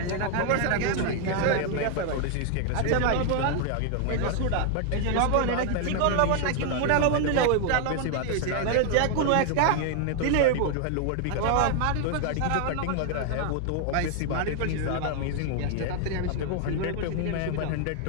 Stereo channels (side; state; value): both; different; correlation 0.00